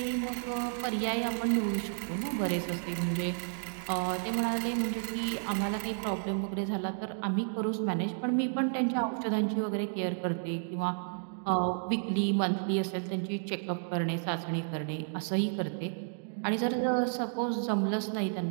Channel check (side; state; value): left; silent; digital silence